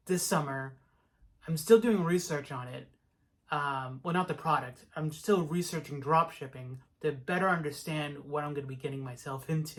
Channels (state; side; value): identical; both; correlation 1.00